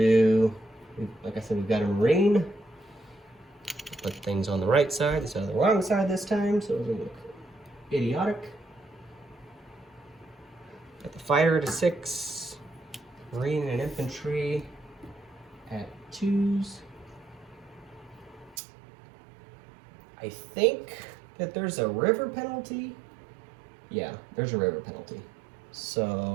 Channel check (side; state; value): left; drops out; at 18.6 s